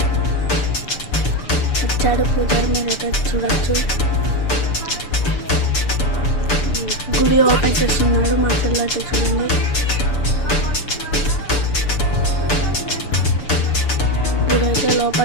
వచ్చాడు పూజారి, మీరైతే చూడొచ్చు. గుడి ఓపెన్ చేస్తున్నాడు మా చెల్లి అయితే. చూడండి, గుడి అయితే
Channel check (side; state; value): right; late; 6.9 ms